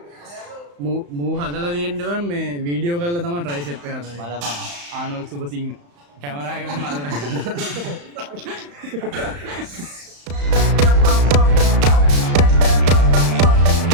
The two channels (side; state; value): left; late; 35 ms